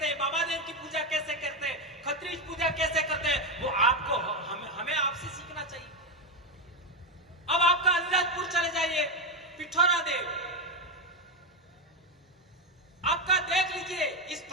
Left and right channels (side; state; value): both; normal; correlation 0.08